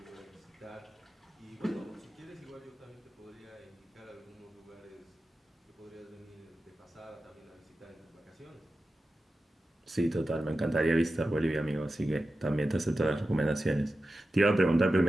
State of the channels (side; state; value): both; normal; correlation 0.93